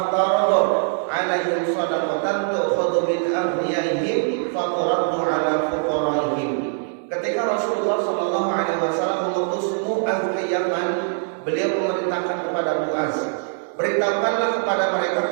'alaihim shadaqatan tu'khadhu min aghniyaihim faturaddu 'ala fuqaraihim." Ketika Rasulullah Shallallahu Alaihi Wasallam mengutus Mu'adz ke Yaman, beliau memerintahkan kepada Mu'adz, beritahukanlah kepada mereka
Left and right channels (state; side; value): silent; left; digital silence